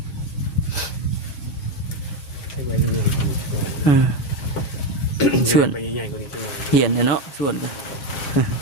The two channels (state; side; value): late; right; 6.3 ms